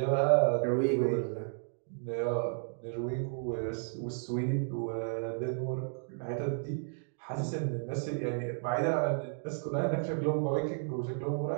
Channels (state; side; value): silent; left; digital silence